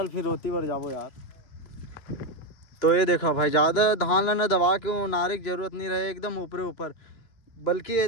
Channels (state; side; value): late; right; 2.9 ms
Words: फिर रोती बर जाबो यार। तो ये देखो भाई, ज़्यादा धान ला ना दबा के वो नारे की जरूरत नहीं रहे, एकदम ऊपरे ऊपर, बल्कि ये